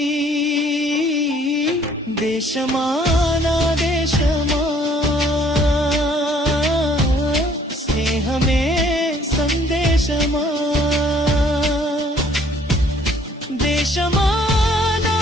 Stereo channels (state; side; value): normal; both; correlation 0.60